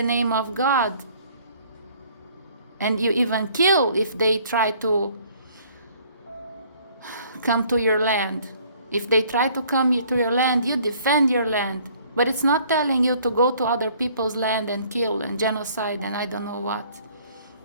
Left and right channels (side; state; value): both; inverted; correlation -0.58